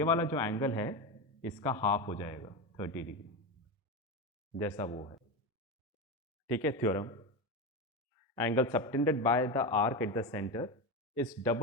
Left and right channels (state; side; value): normal; both; correlation 0.18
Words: वाला जो एंगल है इसका हाफ हो जाएगा 30 डिग्री, जैसा वो है। ठीक है, theorem, angle subtended by the arc at the centre is